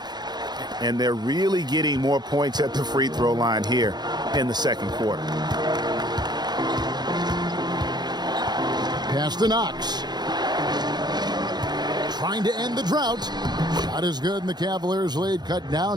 And they're really getting more points at the free throw line here in the second quarter. Pass to Knox. Trying to end the drought. Shot is good, and the Cavaliers lead cut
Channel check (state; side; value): late; left; 0.20 ms